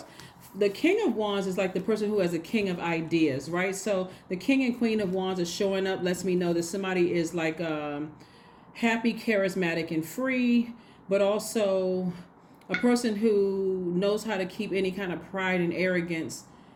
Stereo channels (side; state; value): both; identical; correlation 1.00